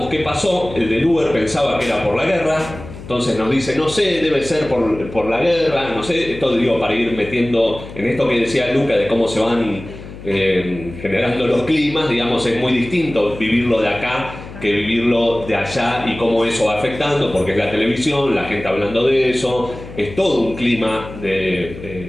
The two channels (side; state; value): left; noise; hum, 14 dB below the sound